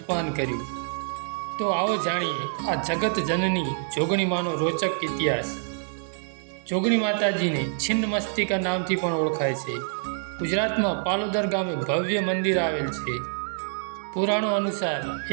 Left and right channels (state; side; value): silent; left; digital silence